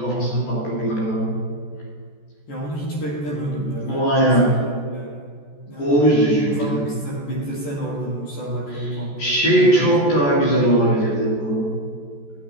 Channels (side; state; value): right; late; 14 ms